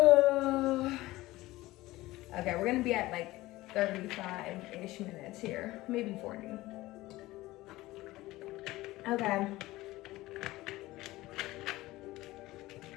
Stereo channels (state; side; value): quieter; right; 18.2 dB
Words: Okay, we're gonna be at like 35-ish minutes here, maybe 40. Okay.